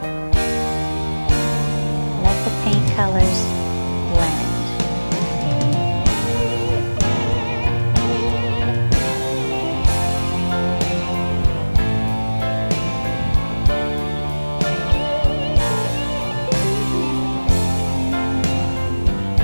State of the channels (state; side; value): inverted; both; correlation -1.00